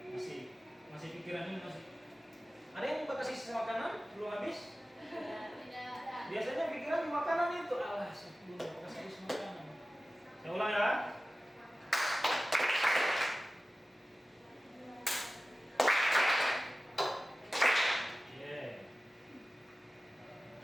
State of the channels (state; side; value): normal; both; correlation 0.96